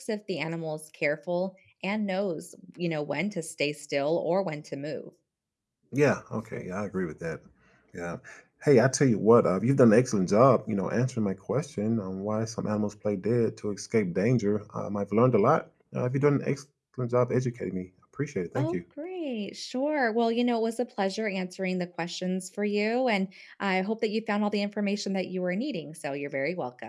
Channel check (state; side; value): identical; both; correlation 1.00